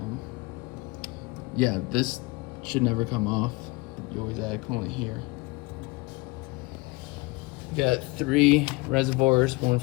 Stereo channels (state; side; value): quieter; right; 24.4 dB